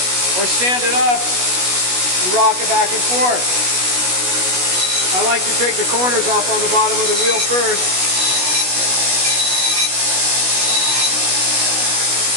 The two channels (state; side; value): late; left; 16 ms